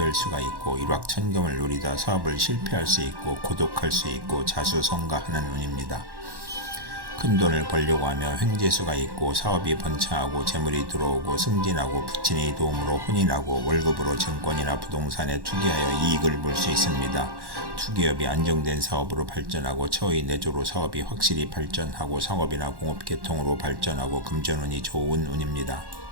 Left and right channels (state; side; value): late; left; 1.1 ms